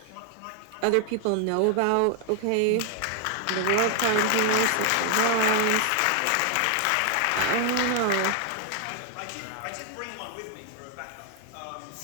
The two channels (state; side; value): different; both; correlation 0.00